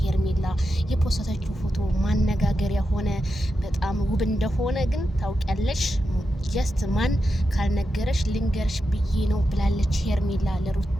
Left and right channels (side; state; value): both; normal; correlation 0.88